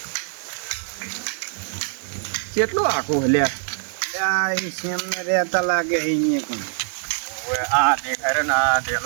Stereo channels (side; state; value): left; silent; digital silence